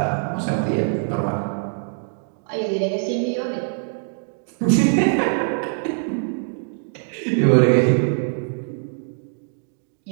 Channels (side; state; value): left; silent; 63 dB below the other